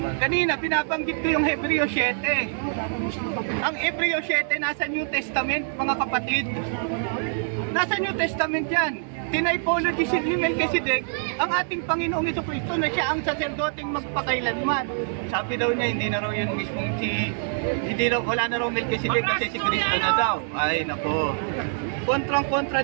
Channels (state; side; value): silent; left; digital silence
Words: Kanina, pinabanggit ko yung Hebreo 7. Ang Hebreo 7 nasa New Testament, mga kapatid. Nasa New Testament yan. Tinipology ni Melchizedek ang ating Panginoong Jesucristo na siya ang saserdoting magpakailanman. Sabi daw niya, hindi na raw yun mismong wala na raw Melchizedek kasi si Kristo na daw. Ay, nako. Kontrang-kontra